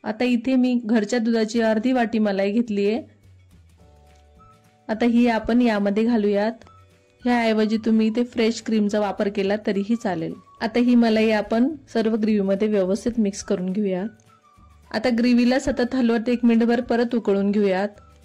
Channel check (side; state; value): both; identical; correlation 1.00